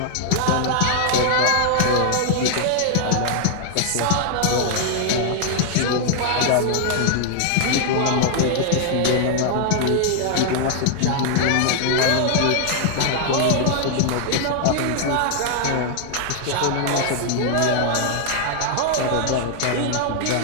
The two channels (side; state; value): both; different; correlation -0.01